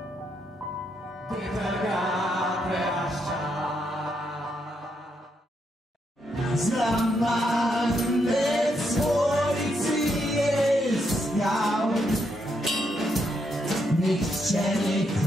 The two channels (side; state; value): both; normal; correlation 0.78